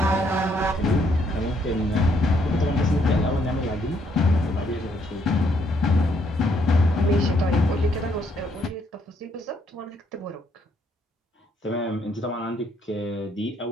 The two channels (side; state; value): both; normal; correlation 0.71